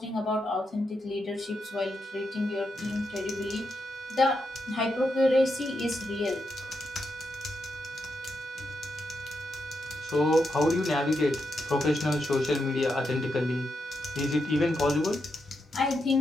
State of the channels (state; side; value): normal; both; correlation 0.84